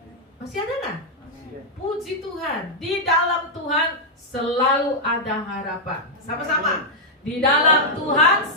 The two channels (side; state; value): both; normal; correlation -0.04